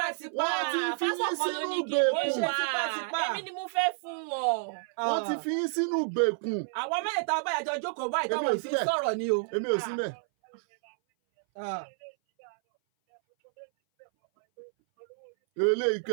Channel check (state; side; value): silent; left; 58 dB below the other